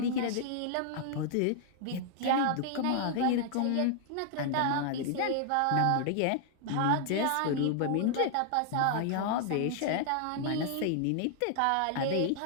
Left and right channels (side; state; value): both; different; correlation 0.00